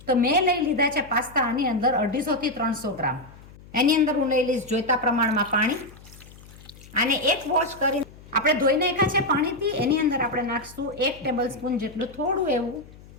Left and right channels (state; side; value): noise; left; hum, 21 dB below the sound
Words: તો મેં લઈ લીધા છે પાસ્તા આની અંદર 250 થી 300 ગ્રામ. એની અંદર હું લઈ લઈશ જોઈતા પ્રમાણમાં પાણી. આને એક વોશ કરી આપણે ધોઈ નાખ્યા છે પાણીથી. એની અંદર આપણે નાખશું 1 ટેબલ સ્પૂન જેટલું થોડું એવું